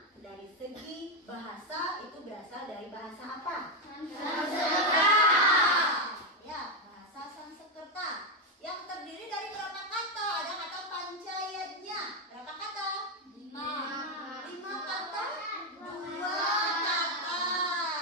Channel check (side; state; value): both; normal; correlation 0.06